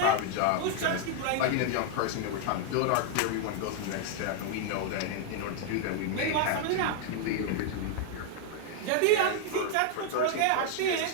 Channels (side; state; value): both; different; correlation 0.00